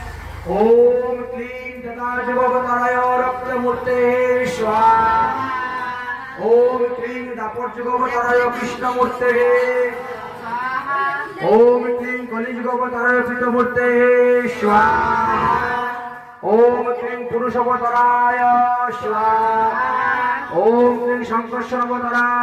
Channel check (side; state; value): both; identical; correlation 1.00